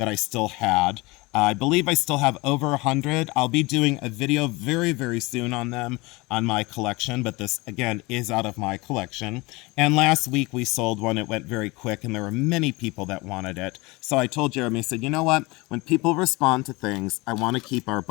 I still had. I believe I still have over 100. I'll be doing a video very, very soon on them on my collection, but this, again, is out of my collection. And last week we sold one. It went very quick, and there were many people that wanted it. So I told Jeremy, I said, you know what? When people respond to things, I want to keep our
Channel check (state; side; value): quieter; right; 23.9 dB